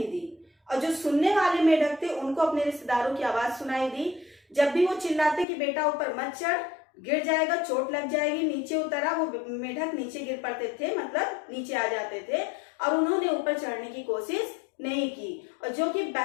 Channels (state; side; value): drops out; right; at 5.5 s